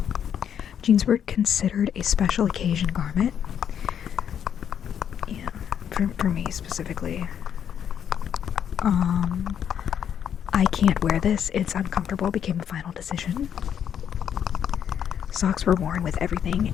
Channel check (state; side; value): quieter; right; 8.8 dB